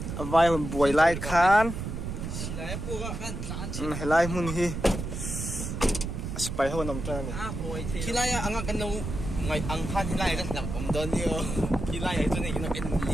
vai hun buai lai khan helai mun hi spy ho nam tan kilai anga kan no ngai ang khan kilai kan lang om don yo kilai ai tu ni kan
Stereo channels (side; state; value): right; noise; rumble, 5 dB below the sound